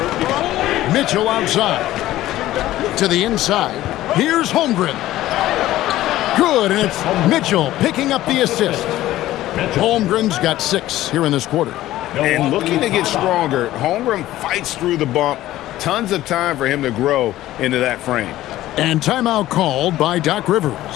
Mitchell outside. To the inside. Here's Holmgren. Good, and it's Mitchell picking up the assist. Holmgren's got 6 here in this quarter. And looking to get stronger, Holmgren fights through the bump. Tons of time for him to grow into that frame. And timeout called by Doc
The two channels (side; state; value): right; quieter; 15.0 dB